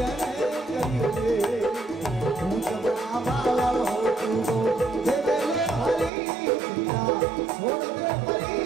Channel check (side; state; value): left; drops out; at 6.1 s